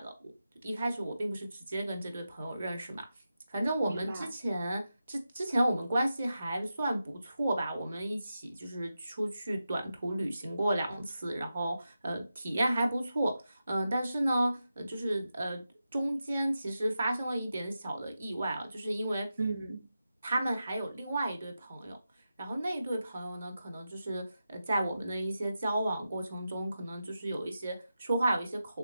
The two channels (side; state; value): both; inverted; correlation -0.90